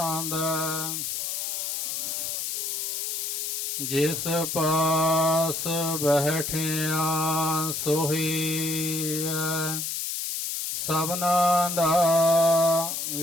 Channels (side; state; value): left; noise; hiss, 3 dB below the sound